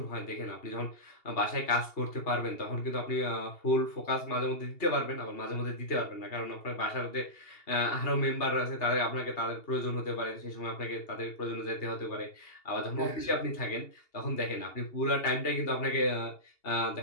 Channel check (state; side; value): late; right; 2.8 ms